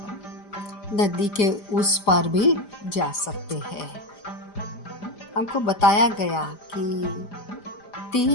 नदी के उस पार भी जा सकते हैं। हमको बताया गया कि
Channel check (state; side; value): late; right; 5.0 ms